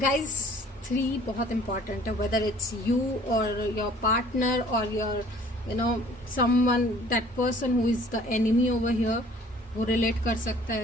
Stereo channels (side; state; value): both; normal; correlation 0.54